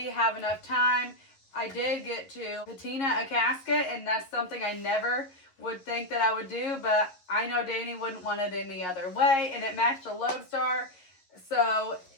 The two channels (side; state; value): right; late; 11 ms